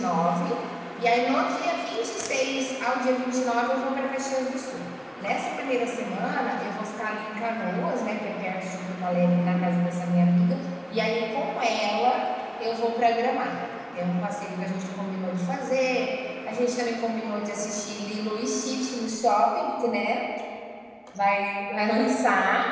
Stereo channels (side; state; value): both; identical; correlation 1.00